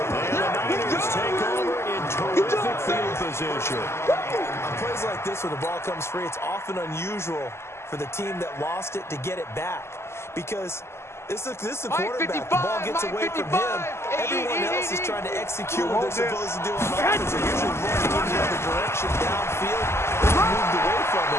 the Niners take over in terrific field position. On plays like this, when the ball comes free, it's often unusual for the team that lost it to get it back, because this is a quarterback. The ball gets away from him. Everyone else is trying to execute what they're supposed to do on offense. They're usually running in the other direction downfield. They're moved away from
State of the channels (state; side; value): late; right; 0.13 ms